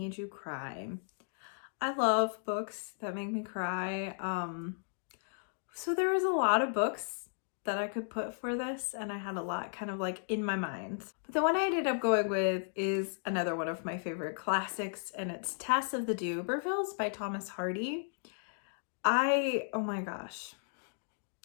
you cry. I love books that make me cry. So there was a lot of books that I could put for this, and I had a lot kind of in my mind. But the one I ended up going with is another one of my favorite classics, and it's Tess of the D'Urbervilles by Thomas Hardy. Oh my gosh.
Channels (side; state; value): right; silent; digital silence